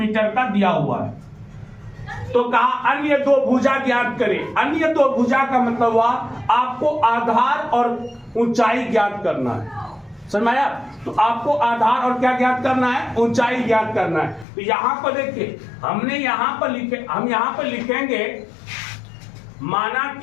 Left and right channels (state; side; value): drops out; right; at 14.5 s